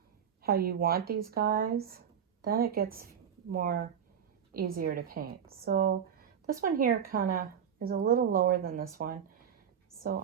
how you want these guys, then it gets more easier to paint. So this one here kind of is a little lower than this one. So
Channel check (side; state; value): left; quieter; 8.3 dB